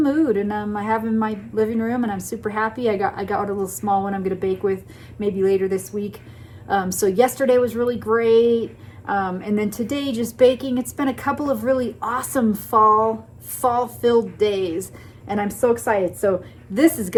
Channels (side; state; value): both; identical; correlation 1.00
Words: and I have them in my living room, and I'm super happy. I got a little small one I'm going to bake with maybe later this week. So yesterday was really great, and then today just baking. It's been a couple of really awesome fall-filled days, and I'm so excited. So this is